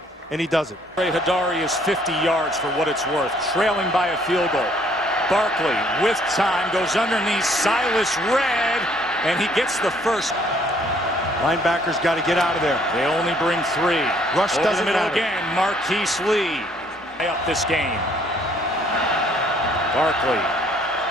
and he does it. Hadari is 50 yards for what it's worth, trailing by a field goal. Barkley with time goes underneath Silas Red, and he gets the first. Linebackers got to get out of there. They only bring 3. Rush Over doesn't the middle matter. again. Marquise Lee up this game. Barkley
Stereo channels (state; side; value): normal; both; correlation 0.63